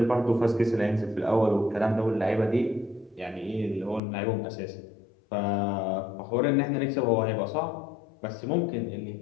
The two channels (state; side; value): drops out; right; at 4.0 s